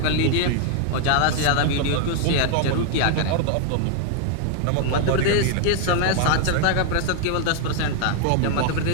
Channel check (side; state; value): both; different; correlation 0.00